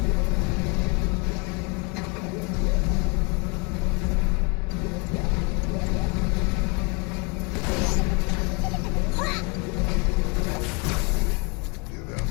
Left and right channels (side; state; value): right; quieter; 30.1 dB